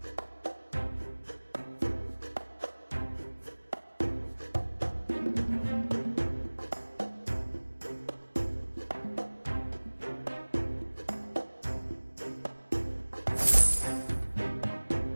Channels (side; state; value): both; inverted; correlation -1.00